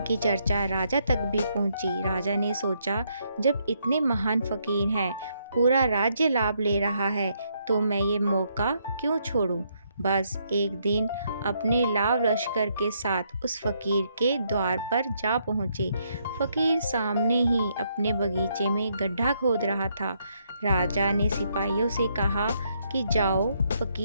चर्चा राजा तक भी पहुंची। राजा ने सोचा, जब इतने महान फकीर हैं, पूरा राज्य लाभ ले रहा है, तो मैं ये मौका क्यों छोड़ूं। बस एक दिन अपने लाव लश्कर के साथ उस फकीर के द्वार पर जा पहुंचे। फकीर सामने ही अपने बगीचे में गड्ढा खोद रहा था। राजा ने सिपाहियों से कहा कि जाओ,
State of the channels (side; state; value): both; inverted; correlation -0.75